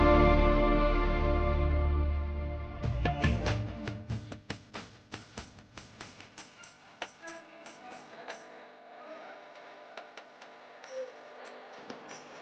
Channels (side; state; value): both; identical; correlation 1.00